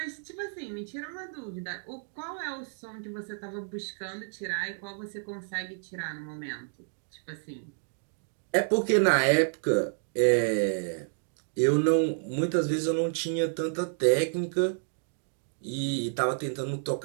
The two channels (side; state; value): left; silent; digital silence